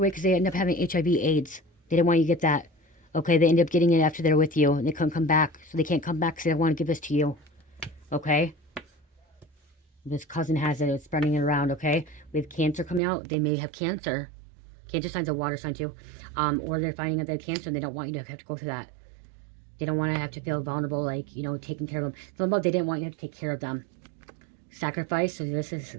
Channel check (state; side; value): drops out; left; at 13.0 s